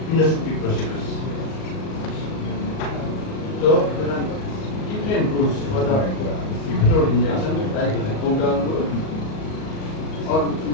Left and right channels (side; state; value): right; late; 38 ms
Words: endoscopic procedures. So there are different routes for the epidural injection, like the Paudel route, or